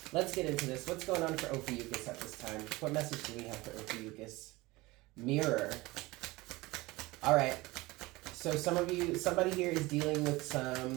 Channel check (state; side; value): quieter; left; 21.2 dB